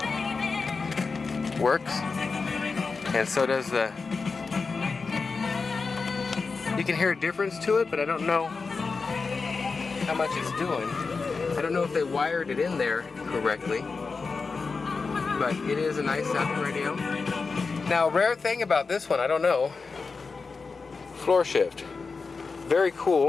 works, and so does the. You can hear a difference to it, but I don't know how much it's doing. I don't know if they wired it in there correctly, but it is a nice sounding radio. Now, rare thing about this one, I don't know. Floor shift, very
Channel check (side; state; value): right; quieter; 4.5 dB